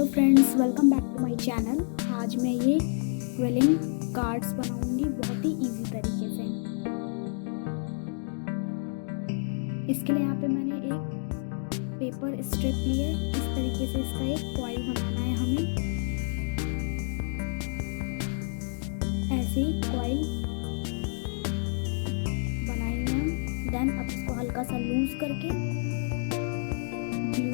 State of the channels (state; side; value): silent; right; digital silence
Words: friends, welcome back to my channel. आज मैं ये क्विलिंग कार्ड्स बनाऊंगी बहुत ही इजी तरीके से। इसके लिए यहाँ पे मैंने एक पेपर स्ट्रिप ली है। इस तरीके से इसका एक फॉइल बनाना है हमें। ऐसे ही कॉइल बनाएंगे हम। देन अब इसको हल्का सा लूज करके